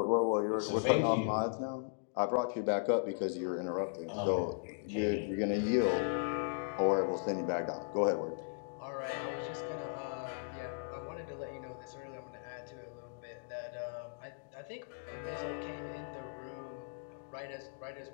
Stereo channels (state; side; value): silent; right; digital silence